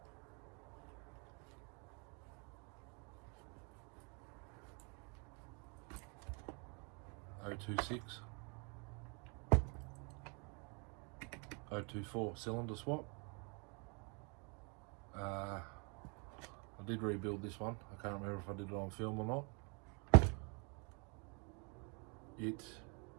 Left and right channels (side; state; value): left; quieter; 34.8 dB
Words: .026, 024 cylinder swap. I did rebuild this one. I can't remember if I did it on film or not. It